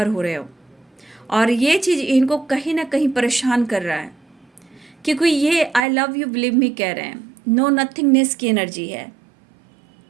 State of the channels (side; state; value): left; drops out; at 5.9 s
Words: हो रहे हो, और ये चीज़ इनको कहीं ना कहीं परेशान कर रहा है, क्योंकि ये I love you believe me कह रहे हैं, नो नथिंगनेस की एनर्जी है।